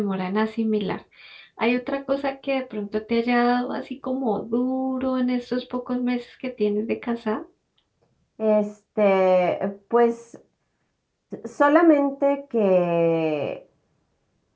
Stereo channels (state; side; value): identical; both; correlation 1.00